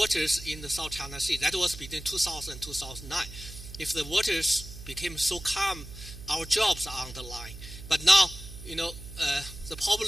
in the South China Sea, that was between 2000 and 2009, if the waters became so calm, our jobs are on the line. But now, the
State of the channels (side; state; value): right; noise; hum, 13 dB below the sound